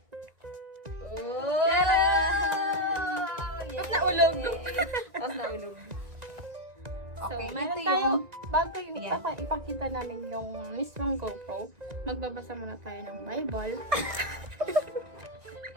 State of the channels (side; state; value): left; late; 1.9 ms